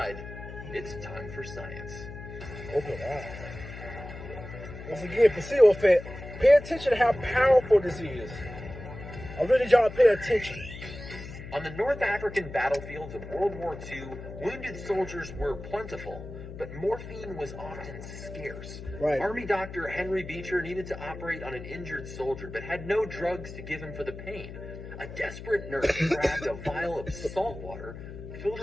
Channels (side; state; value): left; noise; hum, 11 dB below the sound